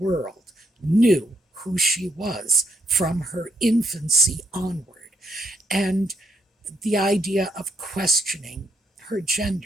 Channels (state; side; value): normal; both; correlation 0.75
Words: knew who she was from her infancy onward. And the idea of questioning her